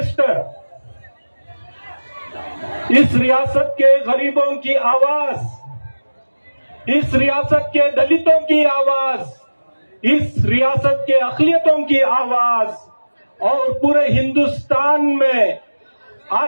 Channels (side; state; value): both; inverted; correlation -1.00